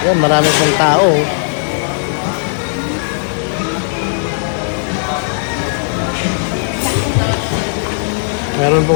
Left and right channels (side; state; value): right; silent; digital silence